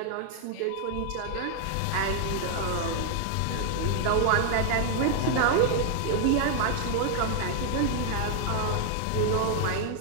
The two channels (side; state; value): both; different; correlation 0.00